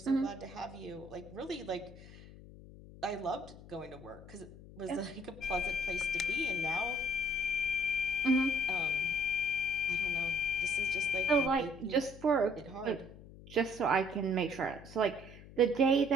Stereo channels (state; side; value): noise; left; hum, 18 dB below the sound